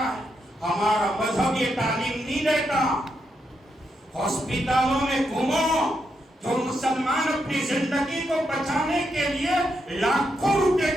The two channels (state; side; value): normal; both; correlation 0.82